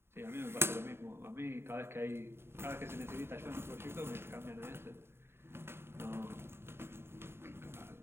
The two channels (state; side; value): late; left; 0.11 ms